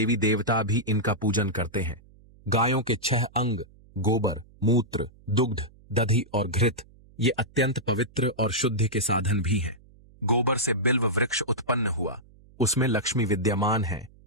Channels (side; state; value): right; noise; hum, 26 dB below the sound